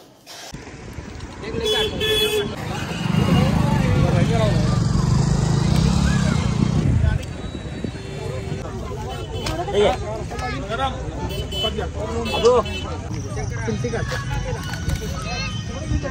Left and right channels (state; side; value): identical; both; correlation 1.00